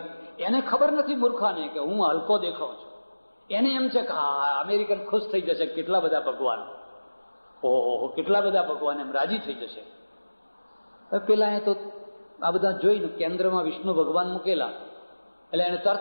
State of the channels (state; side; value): inverted; both; correlation -1.00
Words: એને ખબર નથી મૂર્ખાને કે હું હલકો દેખાઉં છું. એને એમ છે કે હા અમેરિકન ખુશ થઈ જશે, કેટલા બધા ભગવાન, ઓહો કેટલા બધા ભગવાન, એમ રાજી થઈ જશે. પેલા એ તો આ બધા જોઈને કેન્દ્રમાં વિષ્ણુ ભગવાન મૂકેલા, એટલે એને